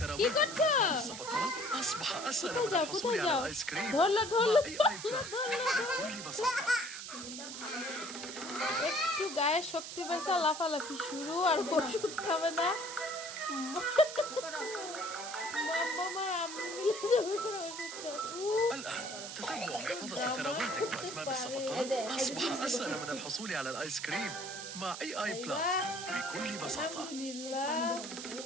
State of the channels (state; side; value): noise; right; hiss, 9 dB below the sound